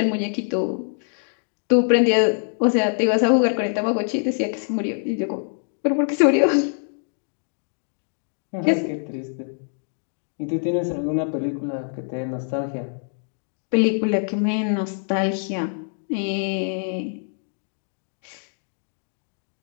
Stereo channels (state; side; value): silent; right; digital silence